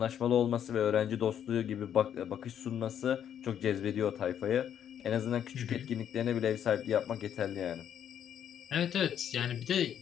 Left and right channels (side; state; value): right; quieter; 9.4 dB